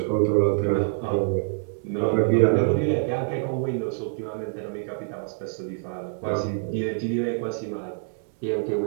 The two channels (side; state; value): left; silent; digital silence